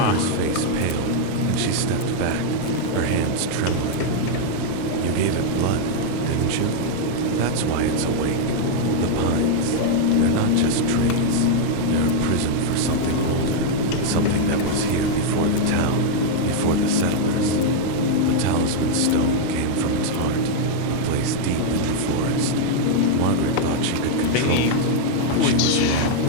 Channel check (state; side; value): different; both; correlation -0.01